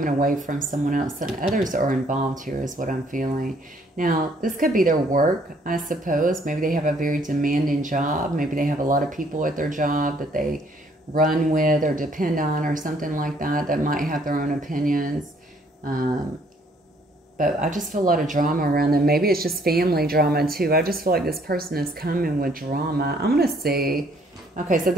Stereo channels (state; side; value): normal; both; correlation 0.64